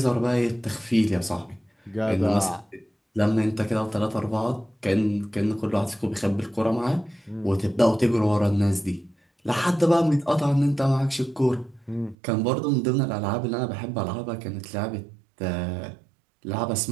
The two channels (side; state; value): left; drops out; at 12.2 s